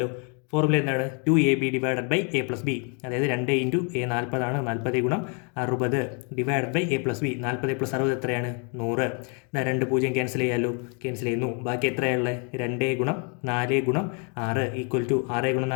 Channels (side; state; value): right; quieter; 37.5 dB